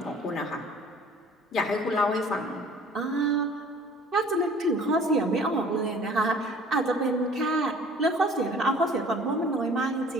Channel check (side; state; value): both; normal; correlation 0.50